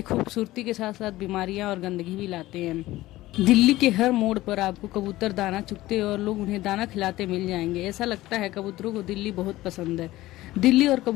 खूबसूरती के साथ साथ बीमारियां और गंदगी भी लाते हैं। दिल्ली के हर मोड़ पर आपको कबूतर दाना चुगते और लोग उन्हें दाना खिलाते मिल जाएंगे। ऐसा लगता है कबूतरों को दिल्ली बहुत पसंद है। दिल्ली और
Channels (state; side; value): quieter; right; 17.0 dB